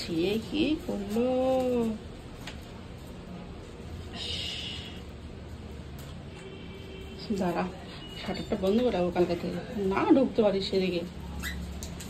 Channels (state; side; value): identical; both; correlation 1.00